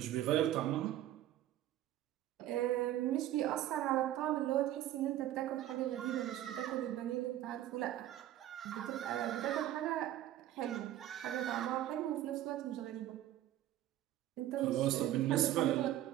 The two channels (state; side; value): quieter; left; 13.2 dB